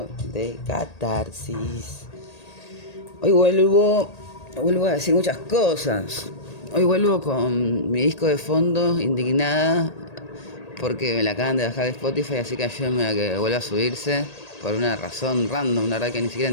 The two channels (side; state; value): right; late; 1.8 ms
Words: de Catarsis. Hoy vuelvo a decir muchas cosas. Hoy vuelvo con mi disco de fondo, indignada, porque me la acaban de bajar de Spotify, así que ayúdenme a que vuelva a subirse, por una razón random, la verdad que ni siquiera